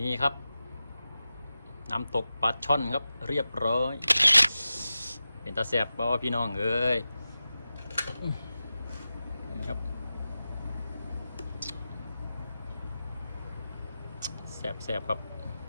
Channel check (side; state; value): both; inverted; correlation -0.93